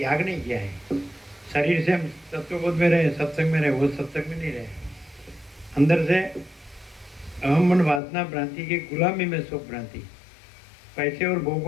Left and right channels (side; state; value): right; drops out; at 8.0 s